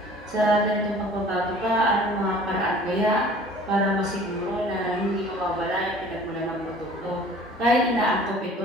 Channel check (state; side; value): normal; both; correlation 0.48